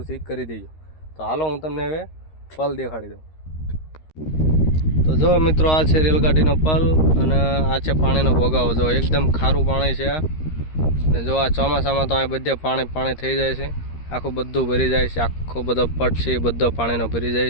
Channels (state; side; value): late; right; 13 ms